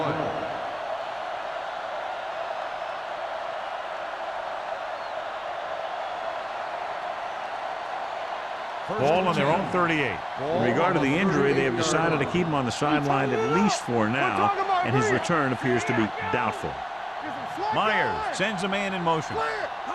Ball on their own 38. In regard to the injury, they have decided to keep him on the sideline at least for now, and his return appears to be doubtful. Myers sends a man in motion.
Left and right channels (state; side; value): identical; both; correlation 1.00